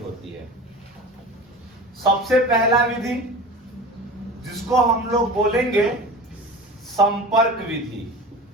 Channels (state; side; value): normal; both; correlation 0.34